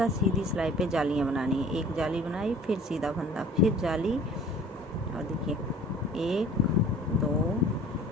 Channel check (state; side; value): normal; both; correlation 0.48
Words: सीधी सिलाई पे जालियाँ बनानी है। एक जाली बनाई, फिर सीधा फंदा, फिर जाली और देखिए 1 2